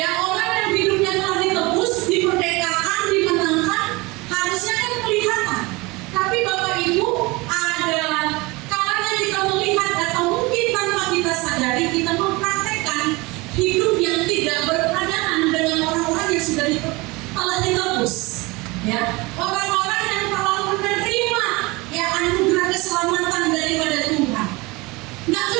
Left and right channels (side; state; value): left; quieter; 23.9 dB